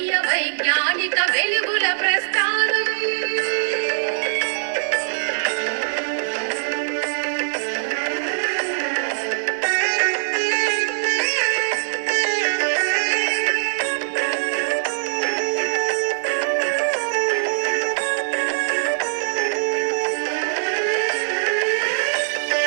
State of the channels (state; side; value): silent; left; digital silence